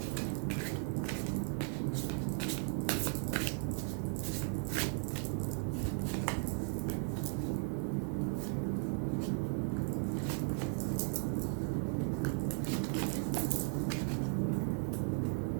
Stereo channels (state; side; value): silent; left; 53 dB below the other